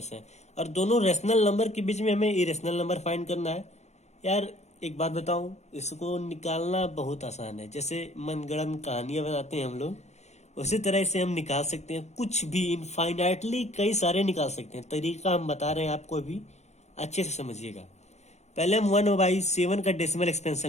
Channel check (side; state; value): right; late; 0.32 ms